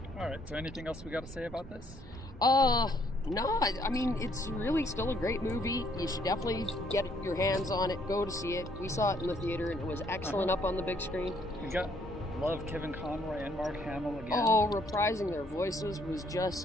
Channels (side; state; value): both; normal; correlation 0.67